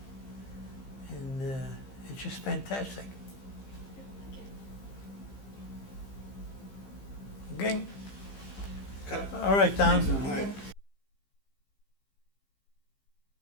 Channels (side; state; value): right; late; 15 ms